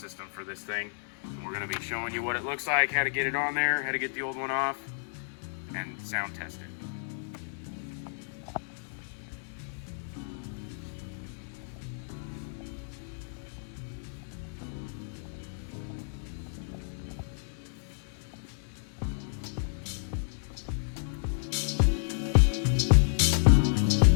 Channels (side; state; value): right; silent; 57 dB below the other